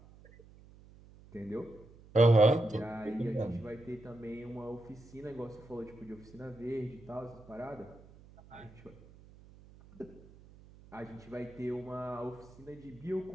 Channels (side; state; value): right; noise; hum, 22 dB below the sound